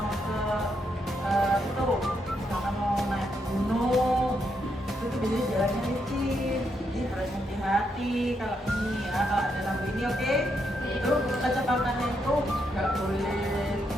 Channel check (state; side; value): normal; both; correlation 0.79